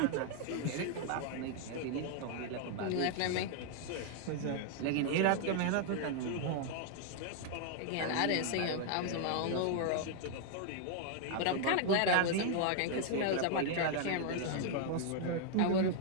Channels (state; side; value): different; both; correlation 0.00